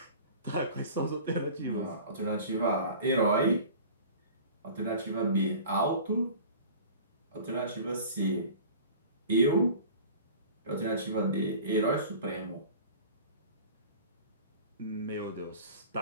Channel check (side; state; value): both; inverted; correlation -0.41